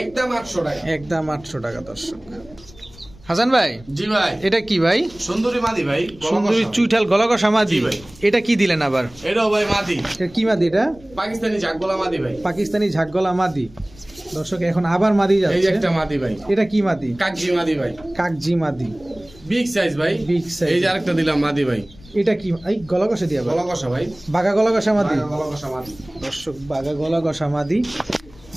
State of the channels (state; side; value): noise; left; rumble, 23 dB below the sound